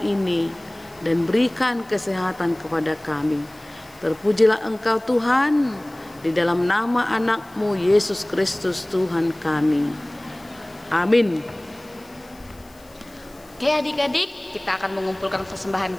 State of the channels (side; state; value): left; noise; hiss, 28 dB below the sound